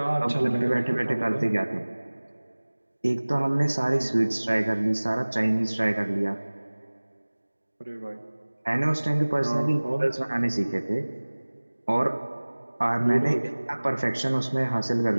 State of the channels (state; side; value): inverted; both; correlation -1.00